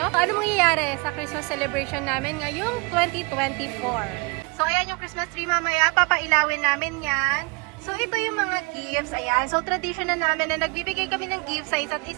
ano mangyayari sa Christmas celebration namin ngayong 2024. So ayan yung Christmas tree mamaya, papailawin namin yan. So, ito yung mga gifts. Ayan. So, tradition na namin na nagbibigay kami ng gifts sa isa't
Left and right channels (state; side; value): quieter; left; 30.0 dB